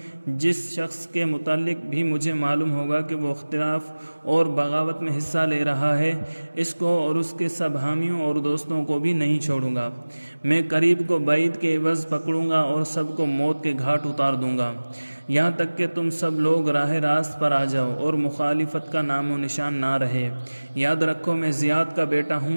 جس شخص کے متعلق بھی مجھے معلوم ہوگا کہ وہ اختلاف اور بغاوت میں حصہ لے رہا ہے، اس کو اور اس کے سب حامیوں اور دوستوں کو بھی نہیں چھوڑوں گا۔ میں قریب کو بعید کے عوض پکڑوں گا اور سب کو موت کے گھاٹ اتار دوں گا، یہاں تک کہ تم سب لوگ راہ راست پر آ جاؤ اور مخالفت کا نام و نشان نہ رہے۔ یاد رکھو میں زیاد کا بیٹا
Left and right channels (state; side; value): inverted; both; correlation -1.00